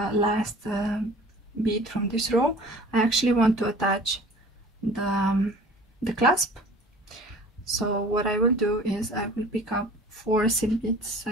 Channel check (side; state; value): both; normal; correlation 0.46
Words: bead from this row, I actually want to attach the clasp. So what I will do is I will pick up 4 seed beads